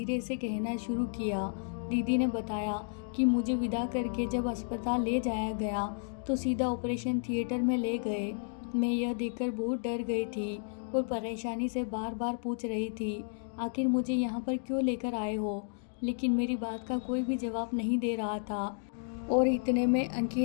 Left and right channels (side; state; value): right; silent; digital silence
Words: से कहना शुरू किया। दीदी ने बताया कि मुझे विदा करके जब अस्पताल ले जाया गया तो सीधा ऑपरेशन थिएटर में ले गए। मैं यह देखकर बहुत डर गई थी और परेशानी से बार बार पूछ रही थी, आखिर मुझे यहाँ पर क्यों लेकर आए हो? लेकिन मेरी बात का कोई भी जवाब नहीं दे रहा था। और इतने में